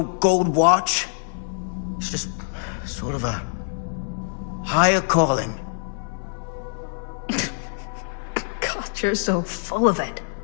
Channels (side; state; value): right; silent; digital silence